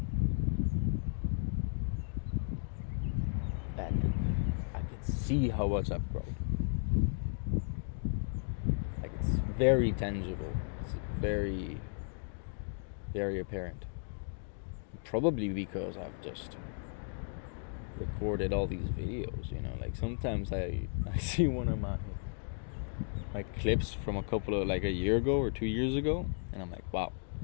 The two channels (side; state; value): right; silent; 54 dB below the other